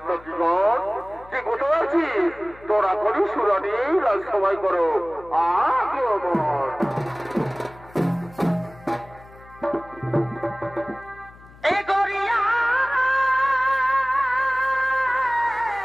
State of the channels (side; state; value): left; noise; hum, 23 dB below the sound